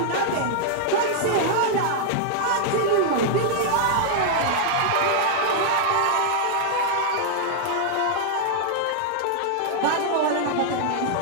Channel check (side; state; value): both; different; correlation -0.01